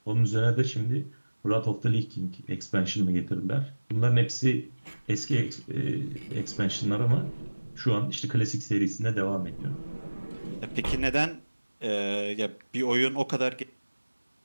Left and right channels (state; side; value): inverted; both; correlation -1.00